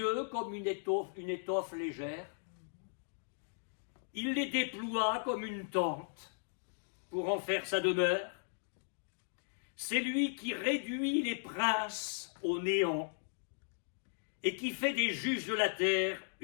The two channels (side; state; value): right; silent; digital silence